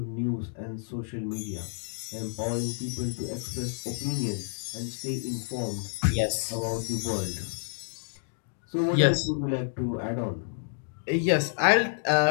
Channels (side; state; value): right; silent; digital silence